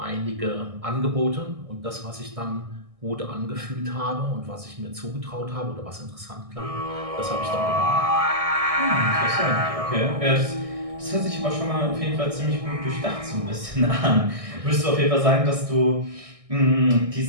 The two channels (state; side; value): late; left; 1.6 ms